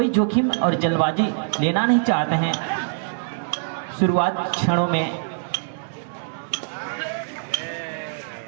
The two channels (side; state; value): left; silent; digital silence